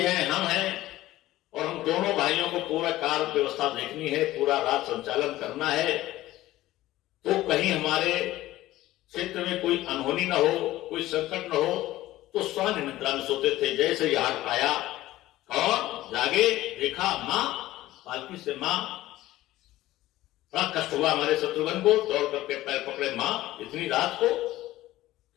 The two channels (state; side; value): quieter; right; 16.0 dB